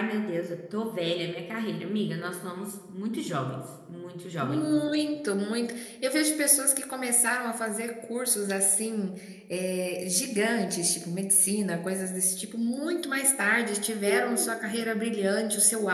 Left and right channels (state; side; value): identical; both; correlation 1.00